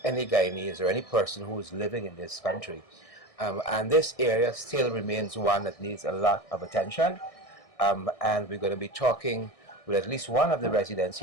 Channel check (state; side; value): late; right; 1.6 ms